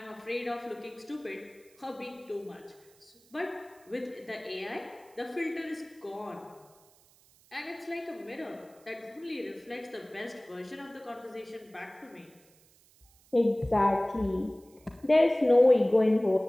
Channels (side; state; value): right; noise; hiss, 29 dB below the sound